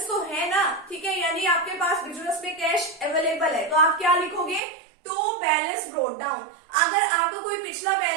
तो है ना, ठीक है, यानी आपके पास बिजनेस में कैश अवेलेबल है, तो आप क्या लिखोगे, टू बैलेंस ब्रोट डाउन। अगर आपका कोई पिछला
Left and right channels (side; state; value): left; drops out; at 4.6 s